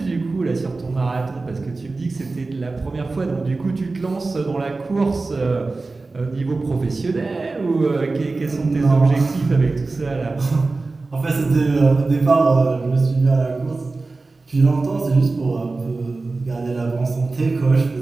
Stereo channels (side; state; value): left; quieter; 3.6 dB